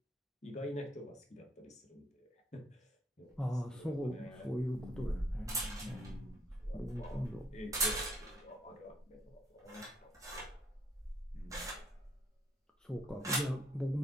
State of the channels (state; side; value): normal; both; correlation 0.68